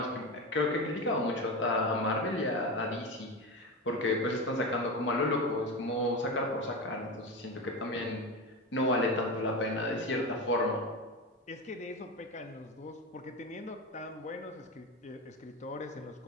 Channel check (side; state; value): both; normal; correlation 0.20